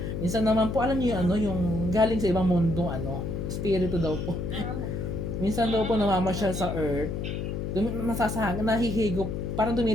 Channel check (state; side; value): noise; left; hum, 3 dB below the sound